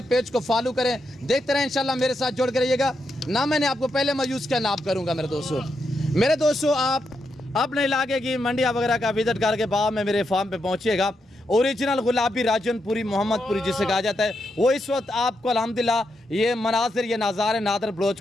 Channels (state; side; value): normal; both; correlation 0.83